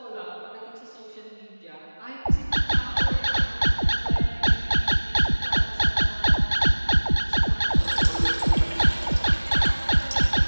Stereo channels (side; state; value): both; inverted; correlation -1.00